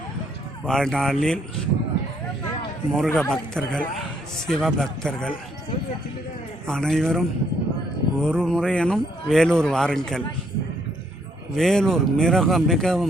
வாழ்நாளில் முருக பக்தர்கள், சிவபக்தர்கள் அனைவரும் ஒரு முறையனும் வேலூர் வாருங்கள். வேலூர்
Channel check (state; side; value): normal; both; correlation 0.70